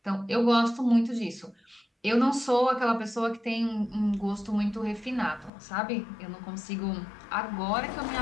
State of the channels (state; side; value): drops out; right; at 5.5 s